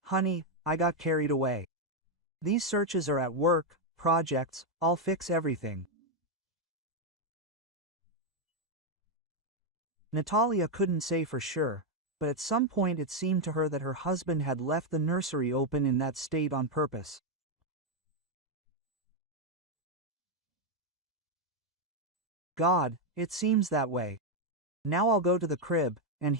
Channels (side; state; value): both; normal; correlation 0.02